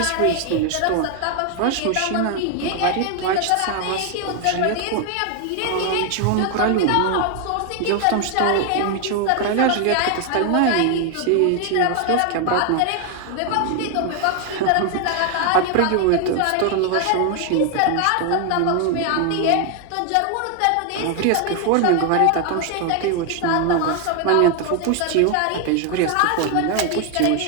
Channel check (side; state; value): both; different; correlation 0.01